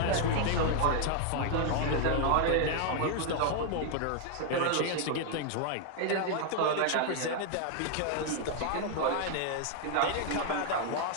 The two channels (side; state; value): both; different; correlation 0.00